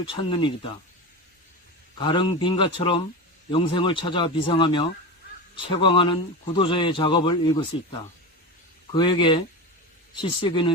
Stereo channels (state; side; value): normal; both; correlation 0.24